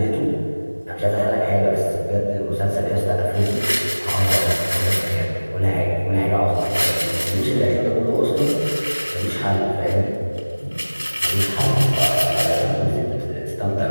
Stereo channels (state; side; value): inverted; both; correlation -1.00